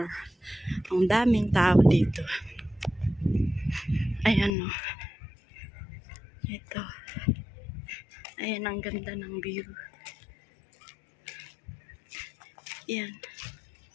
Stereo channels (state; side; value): drops out; right; at 4.5 s